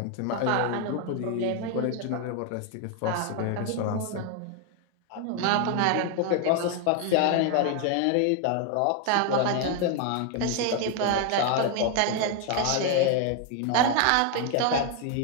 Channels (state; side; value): different; both; correlation 0.01